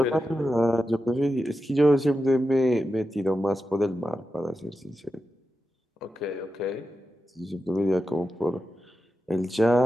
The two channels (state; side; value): normal; both; correlation 0.90